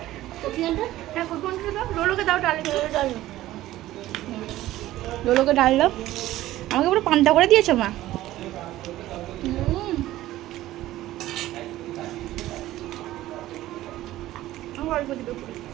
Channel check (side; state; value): left; quieter; 15.2 dB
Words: হ্যাঁ কোনটা দাও, লোলোকে দাও, ডাল ডাল লোলোকে ডাল দাও। আমাকে পুরো পান্তা করে দিয়েছে মা। অল্প দিবে,